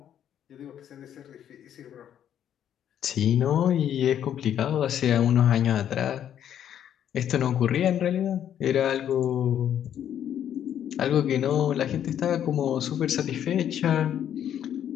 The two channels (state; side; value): quieter; right; 10.0 dB